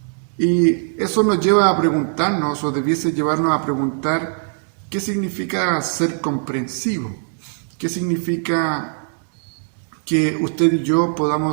Y eso nos lleva a preguntarnos, o debiese llevarnos a preguntar, ¿qué significa ser comprensivo? ¿Qué significa que usted y yo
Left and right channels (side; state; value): left; silent; 65 dB below the other